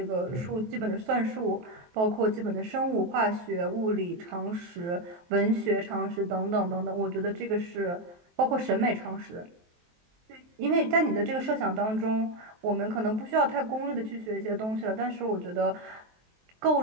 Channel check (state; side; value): late; left; 23 ms